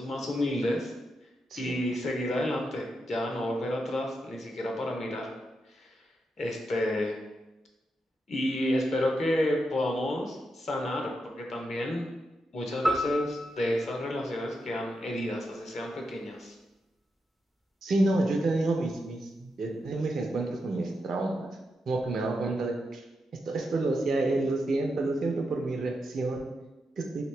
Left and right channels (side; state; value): both; normal; correlation 0.85